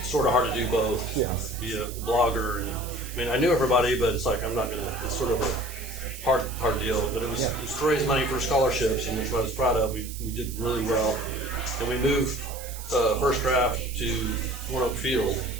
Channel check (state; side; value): noise; right; hiss, 13 dB below the sound